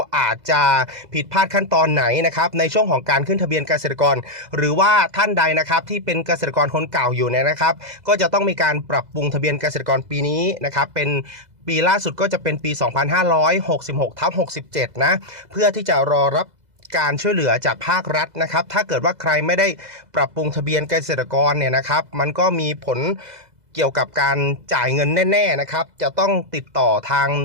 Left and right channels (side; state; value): left; late; 2.0 ms